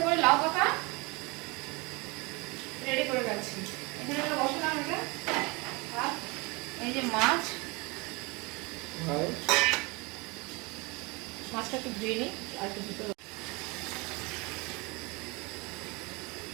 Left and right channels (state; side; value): quieter; left; 27.0 dB